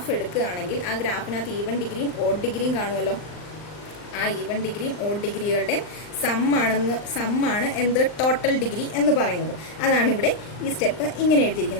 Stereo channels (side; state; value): right; late; 39 ms